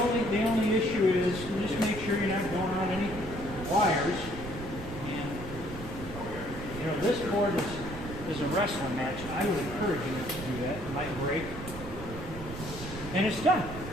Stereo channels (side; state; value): right; noise; rumble, 11 dB below the sound